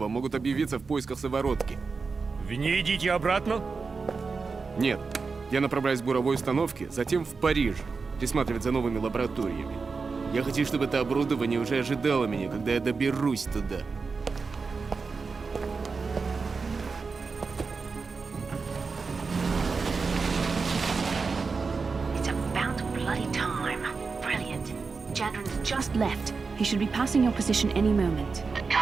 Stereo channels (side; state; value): left; quieter; 4.7 dB